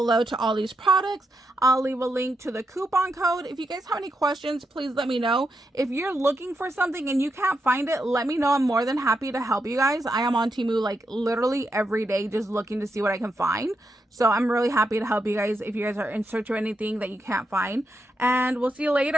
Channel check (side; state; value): both; normal; correlation 0.84